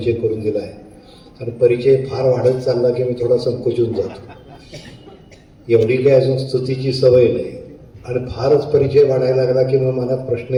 करून दिला आहे आणि परिचय फार वाढत चालला की मी थोडा संकोचून जातो. एवढी काही अजून स्तुतीची सवय नाही आणि फारच परिचय वाढायला लागला की मग मनात प्रश्न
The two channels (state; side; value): identical; both; correlation 1.00